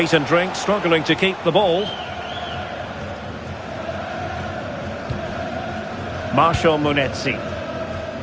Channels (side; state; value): both; identical; correlation 1.00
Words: and drink struggling to keep the ball. Marshall Munetsi.